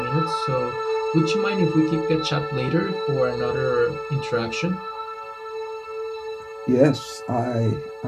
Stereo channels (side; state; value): both; identical; correlation 1.00